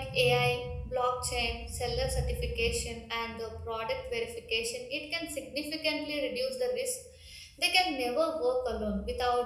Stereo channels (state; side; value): identical; both; correlation 1.00